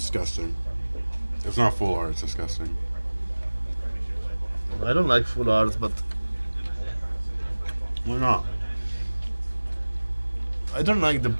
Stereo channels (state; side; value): inverted; both; correlation -1.00